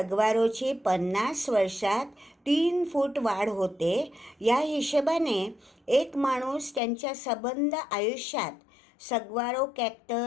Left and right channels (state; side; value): drops out; right; at 6.8 s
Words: 50 वर्षात 3 फूट वाढ होते. या हिशोबाने एक माणूस त्यांच्या सबंध आयुष्यात सग्वारो